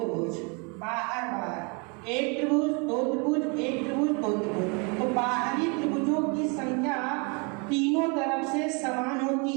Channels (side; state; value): left; quieter; 32.9 dB